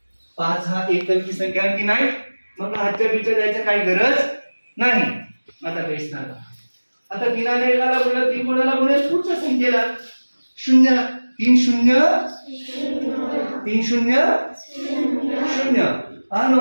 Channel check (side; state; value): both; inverted; correlation -1.00